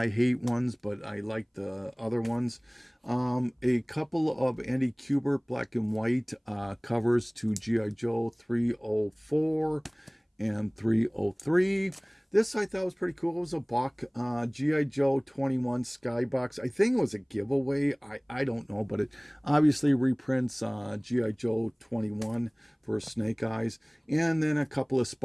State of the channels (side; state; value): both; identical; correlation 1.00